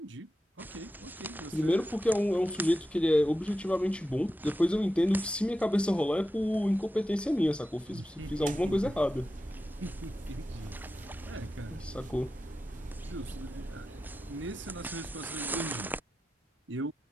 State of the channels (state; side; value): normal; both; correlation 0.91